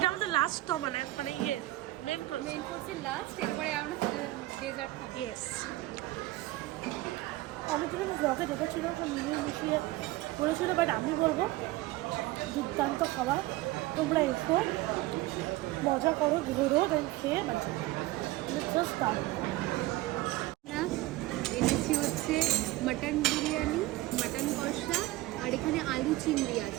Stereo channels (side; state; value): left; quieter; 18.2 dB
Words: আমাদের লাস্ট মানে ইয়ে মেন কোর্স, মেন কোর্সের লাস্ট, এরপরে আমরা ডেজার্ট খাবো। ইয়েস। অনেকদিন আমি ব্লগে দেখেছিল, মিলিয়ে মিশিয়ে বলেছিল, বাট আমি বলবো দুর্দান্ত খাবার। তোমরা এসো, মজা করো, ঘুরো, দেন খেয়ে বাচ্চা জাস্ট দারুণ। আমরা এনেছি হচ্ছে মাটন বিরিয়ানি, মাটন কষা, আর এখানে আলু চিংড়ি